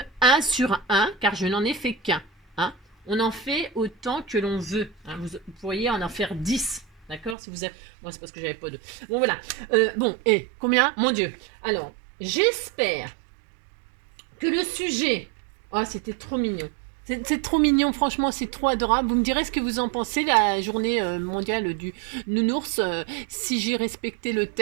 1 sur 1, car je n'en ai fait qu'un. Hein. On en fait autant que l'on veut. Hein. Vous pourriez en faire 10. D'accord? Si vous avez... Moi, c'est parce que j'avais pas de... Bon, voilà. Bon, et combien? Mon Dieu. Alors, j'espère que le sujet... Oh, c'était trop mignon. C'est trop mignon, franchement, c'est trop adorable. Vous me direz ce que vous en pensez, la journée mondiale du nounours, si j'ai respecté le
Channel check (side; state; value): left; drops out; at 7.4 s